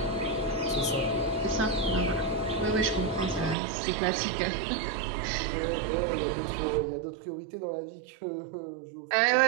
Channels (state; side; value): drops out; left; at 3.6 s